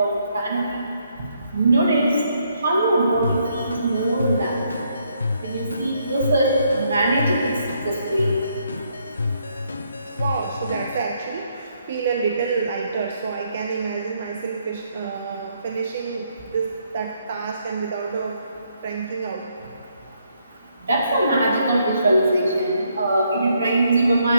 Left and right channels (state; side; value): inverted; both; correlation -0.73